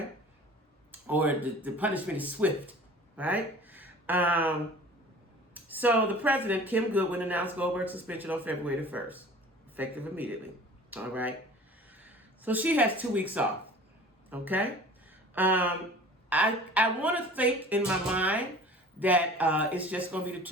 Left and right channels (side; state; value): both; normal; correlation 0.44